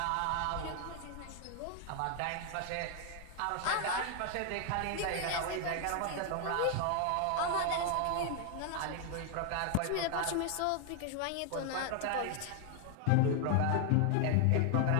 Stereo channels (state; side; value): different; both; correlation 0.00